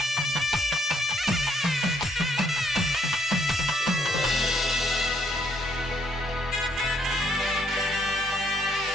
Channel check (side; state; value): both; normal; correlation 0.70